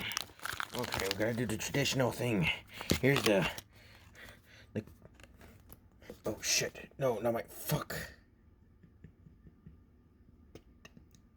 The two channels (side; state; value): both; identical; correlation 1.00